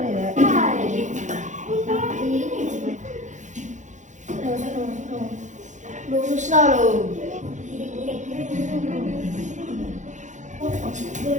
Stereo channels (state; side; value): late; left; 0.35 ms